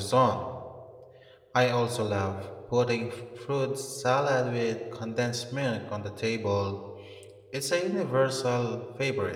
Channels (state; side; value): identical; both; correlation 1.00